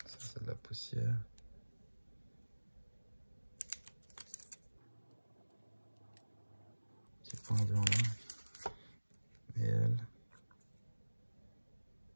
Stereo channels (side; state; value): both; inverted; correlation -1.00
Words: Ça, c'est de la poussière. Petit point blanc là. Et elle.